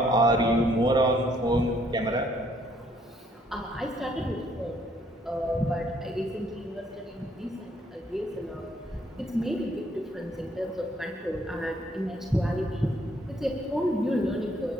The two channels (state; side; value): normal; both; correlation 0.67